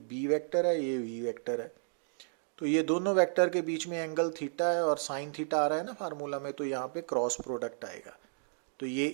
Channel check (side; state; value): left; silent; digital silence